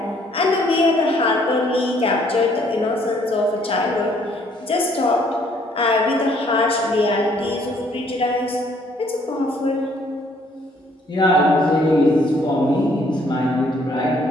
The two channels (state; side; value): normal; both; correlation 0.64